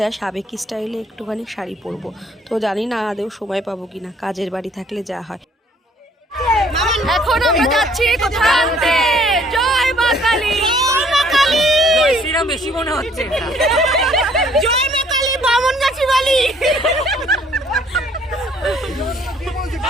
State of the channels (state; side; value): normal; both; correlation 0.60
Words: সাবেকি স্টাইলে একটুখানি শাড়ি পরবো। তো জানি না আদেও সময় পাবো কিনা, কাজের বাড়ি থাকলে যা হয়। এখন আমরা যাচ্ছি কোথায় আনতে? জয় মা কালী, জয় মা কালী, জয় শ্রীরাম বেশি মনে হচ্ছে এটা। জয় মা কালী, বামন গাছি বালি।